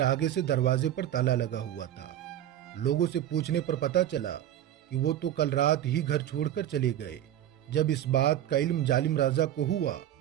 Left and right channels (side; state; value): left; quieter; 11.7 dB